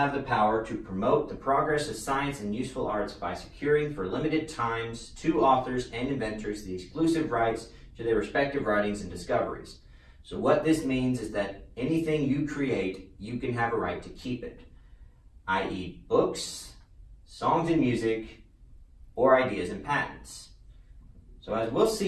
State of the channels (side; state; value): both; identical; correlation 1.00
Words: the power to promote the progress of science and useful arts by securing for limited times to authors and inventors the exclusive rights to their respective writings and discoveries. So what this means is that anything you create, you can have a right to keep it, i.e. books, songs and music, or ideas and patents. So as we'll